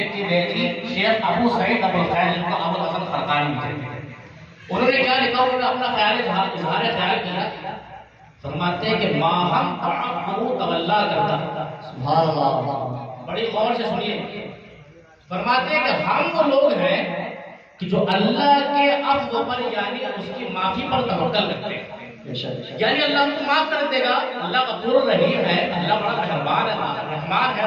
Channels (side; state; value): both; identical; correlation 1.00